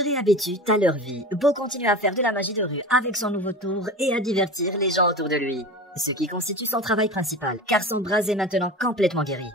réhabituent à leur vie, Bo continue à faire de la magie de rue avec son nouveau tour et à divertir les gens autour de lui. Ce qui constitue son travail principal, car son bras est maintenant complètement guéri.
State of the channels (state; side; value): normal; both; correlation 0.32